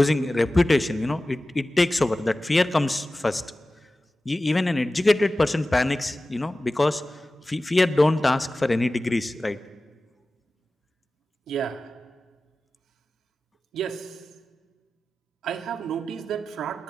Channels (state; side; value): normal; both; correlation 0.96